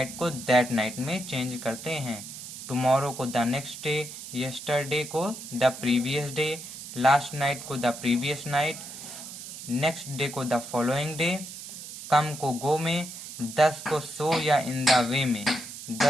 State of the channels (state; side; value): noise; right; hiss, 11 dB below the sound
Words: को दैट नाइट में चेंज करते हैं। टुमारो को द नेक्स्ट डे, यस्टरडे को the previous day, last night को the previous night, next day को द फॉलोइंग डे। कम को गो में, 10 को सो या इन द वे में।